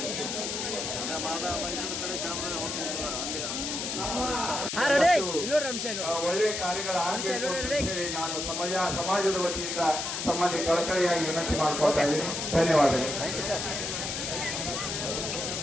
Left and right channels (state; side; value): noise; left; hiss, 3 dB below the sound